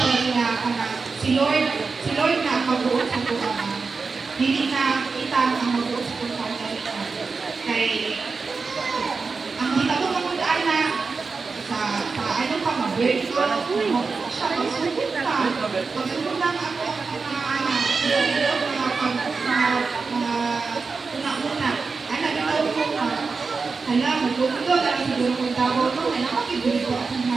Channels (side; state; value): left; quieter; 4.5 dB